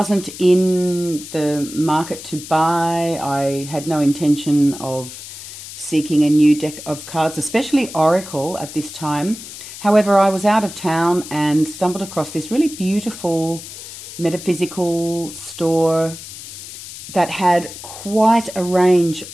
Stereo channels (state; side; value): noise; left; hiss, 13 dB below the sound